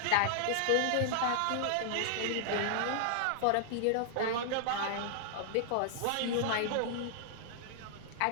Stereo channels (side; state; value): both; different; correlation -0.01